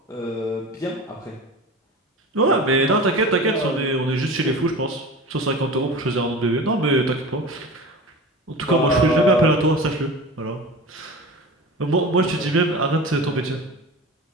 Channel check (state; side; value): normal; both; correlation 0.33